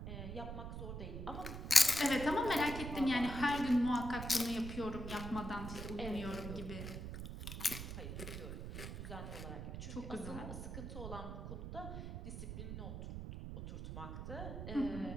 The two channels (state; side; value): noise; right; rumble, 7 dB below the sound